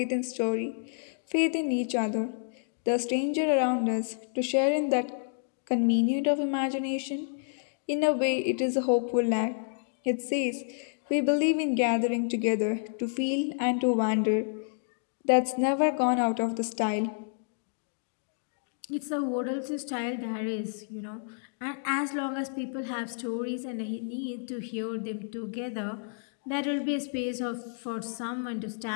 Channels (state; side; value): silent; right; digital silence